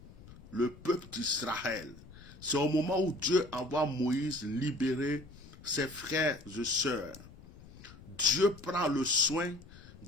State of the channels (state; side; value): noise; left; rumble, 19 dB below the sound